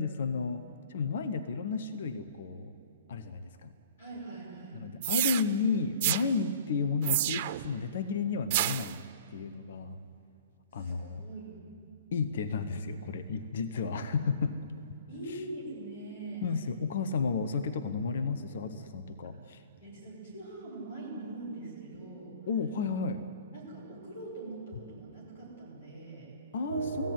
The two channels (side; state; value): both; inverted; correlation -0.49